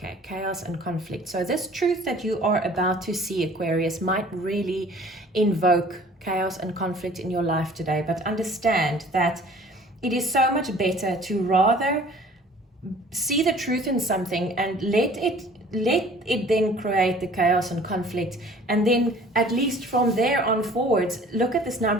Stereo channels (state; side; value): normal; both; correlation 0.50